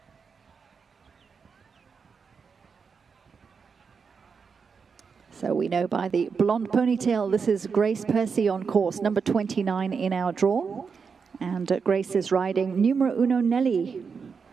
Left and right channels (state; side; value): quieter; left; 5.7 dB